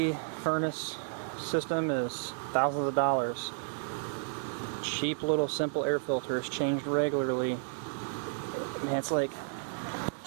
furnace system is thousands of dollars. Cheap little simple air filter is changed regularly. Man, it's like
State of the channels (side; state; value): left; silent; digital silence